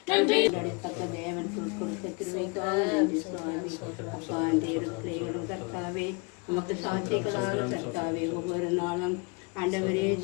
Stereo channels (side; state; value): right; quieter; 30.6 dB